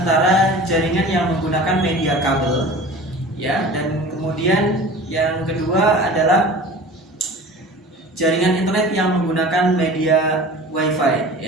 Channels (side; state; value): both; normal; correlation 0.39